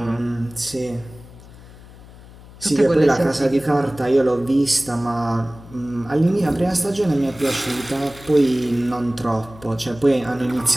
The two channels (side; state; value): left; noise; hum, 20 dB below the sound